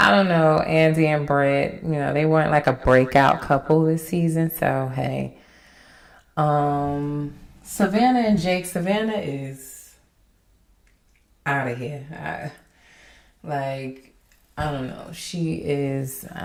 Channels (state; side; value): identical; both; correlation 1.00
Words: don't know, Andy and Brett, you know, they weren't like a breakout couple this season. So hey, Savannah and Jake. Savannah is out of here. I don't know. She is.